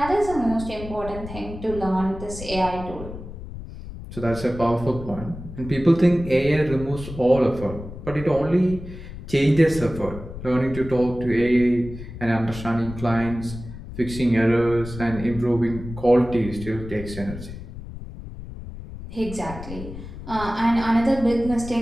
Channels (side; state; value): left; noise; rumble, 11 dB below the sound